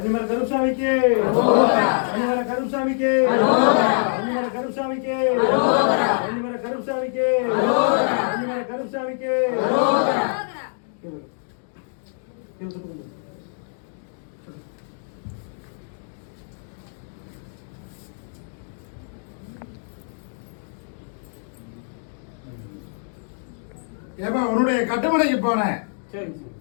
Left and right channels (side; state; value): right; silent; digital silence